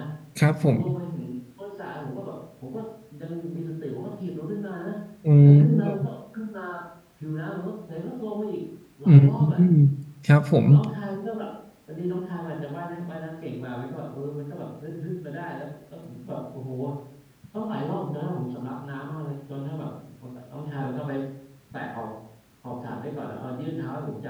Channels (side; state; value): both; identical; correlation 1.00